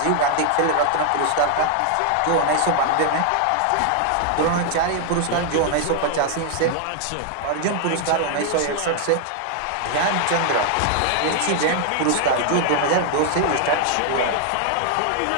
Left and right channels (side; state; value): both; different; correlation 0.00